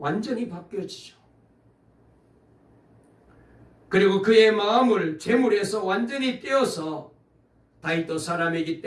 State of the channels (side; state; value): both; identical; correlation 1.00